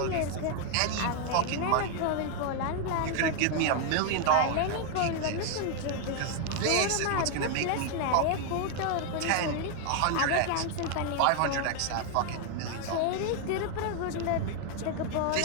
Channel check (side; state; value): both; different; correlation 0.00